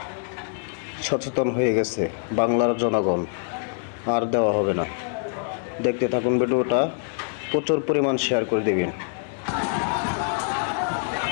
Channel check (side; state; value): right; silent; 62 dB below the other